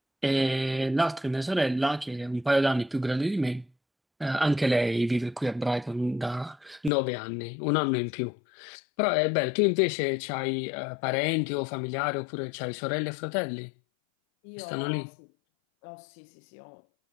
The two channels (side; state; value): right; drops out; at 6.9 s